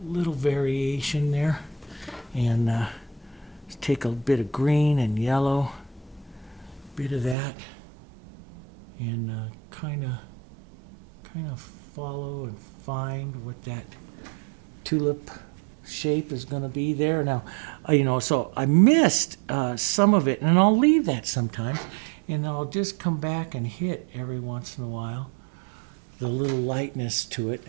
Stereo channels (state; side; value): drops out; left; at 7.4 s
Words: little variation there. And let's take a bit of green and yellow, bit of that, and kind of follow and find what that tulip shape is going to be there. Now, so I missed some of it, and I'll leave that sometimes, and I'll just come back and hit every once in a while the little lightness to it